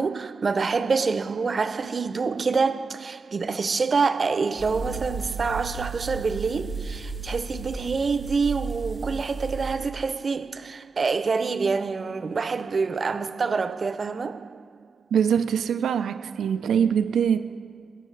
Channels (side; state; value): left; quieter; 5.0 dB